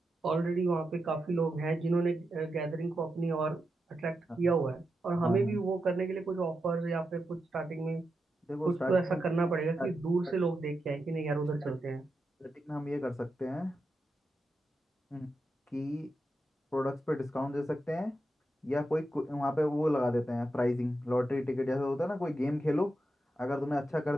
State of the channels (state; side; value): normal; both; correlation 0.87